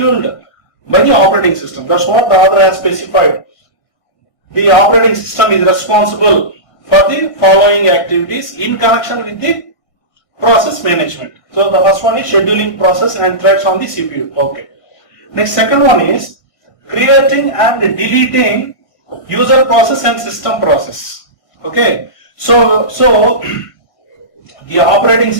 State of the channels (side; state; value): right; late; 1.6 ms